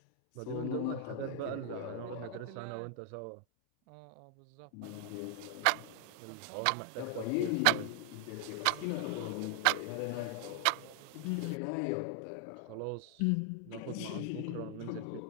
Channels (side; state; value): both; different; correlation 0.00